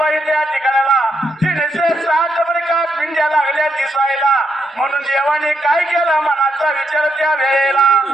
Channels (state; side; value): normal; both; correlation 0.79